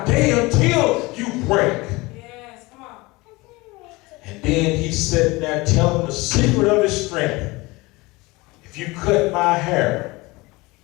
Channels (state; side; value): quieter; right; 22.9 dB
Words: day until you break. Yes, come on. And then he sat there telling the secret of his strength. If you cut my hair,